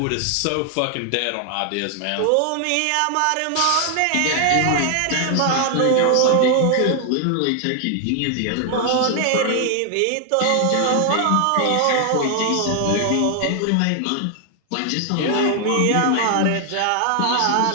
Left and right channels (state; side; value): different; both; correlation 0.00